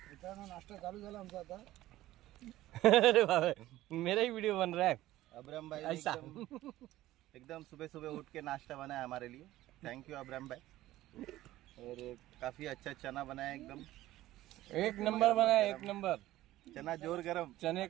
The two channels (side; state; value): left; quieter; 15.5 dB